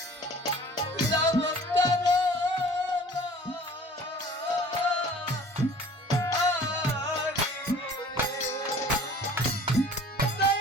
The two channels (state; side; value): normal; both; correlation 0.48